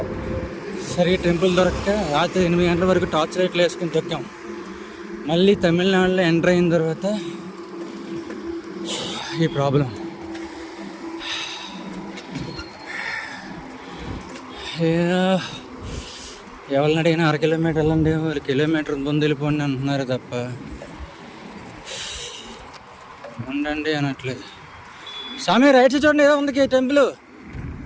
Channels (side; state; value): both; identical; correlation 1.00